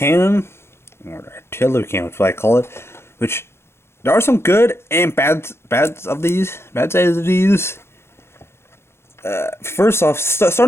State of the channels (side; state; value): right; late; 0.12 ms